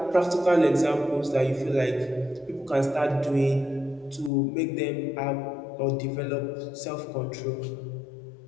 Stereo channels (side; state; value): right; drops out; at 4.3 s